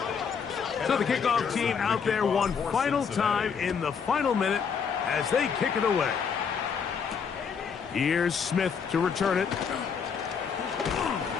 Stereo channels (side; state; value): right; quieter; 6.4 dB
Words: So the kickoff team out there one final time in the final minute as they kick it away. Here's Smith to return it.